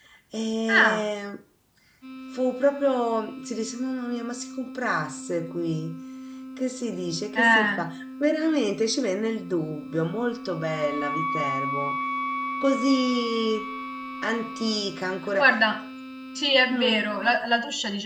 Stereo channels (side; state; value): both; identical; correlation 1.00